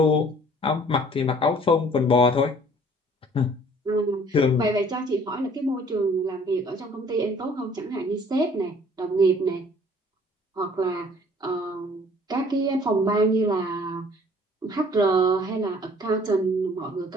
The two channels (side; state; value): both; normal; correlation 0.55